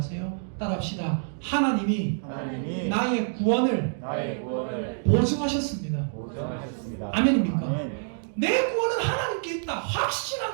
따라합시다. 하나님이 나의 구원을 보증하셨습니다. 아멘입니까? 아멘. 내 구원은 하나님께 있다.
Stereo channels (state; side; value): silent; left; digital silence